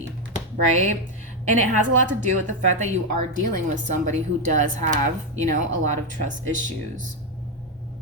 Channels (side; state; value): both; normal; correlation 0.06